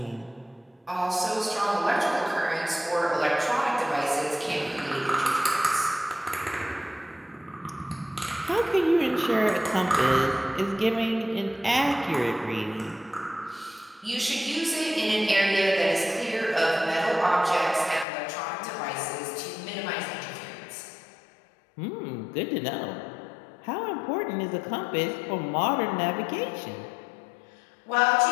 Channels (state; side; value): drops out; right; at 18.1 s